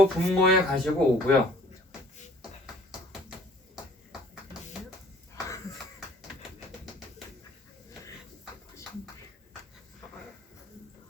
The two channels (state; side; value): normal; both; correlation 0.55